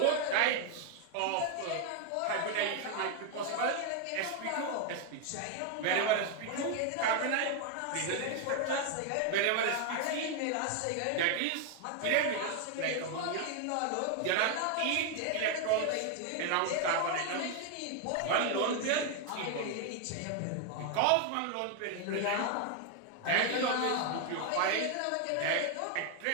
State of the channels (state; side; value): different; both; correlation 0.01